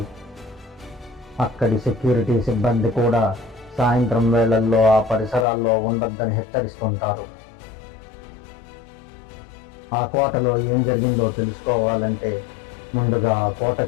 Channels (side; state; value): right; drops out; at 5.5 s